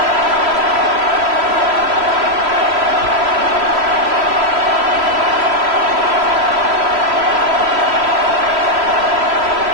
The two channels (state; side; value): late; left; 3.0 ms